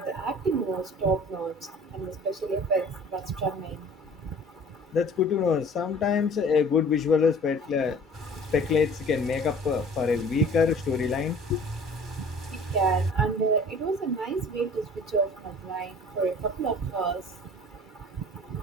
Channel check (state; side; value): normal; both; correlation 0.48